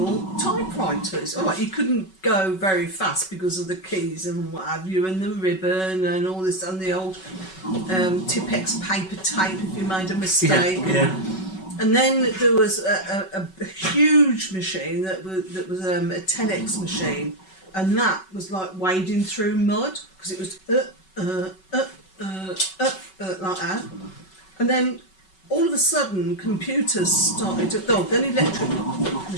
typewriters. All right, you couldn't go very fast because of the keys and what have you, and the ribbon and all this, and the old Tipex paper tape if you made a mistake. Yeah. And then there was a huge machine that was a 10x machine, and that was like wading through mud because it was like that. And then all of a sudden computers started to then electric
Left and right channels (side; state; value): right; late; 5.3 ms